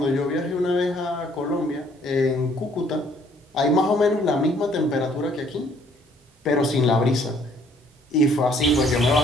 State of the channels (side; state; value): both; normal; correlation 0.62